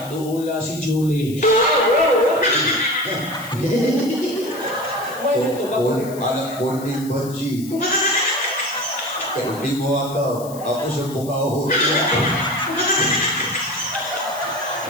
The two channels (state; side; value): noise; left; hiss, 17 dB below the sound